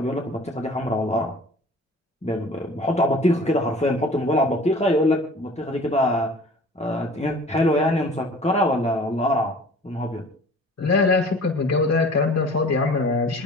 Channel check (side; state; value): both; normal; correlation 0.46